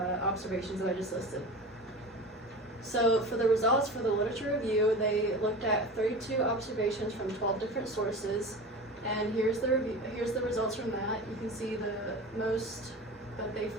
observations that I just listed. So for the results for the literature review, they looked at 32 observations from 12 different sources, and here's the results from that. You can see the most that they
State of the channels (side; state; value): both; normal; correlation 0.32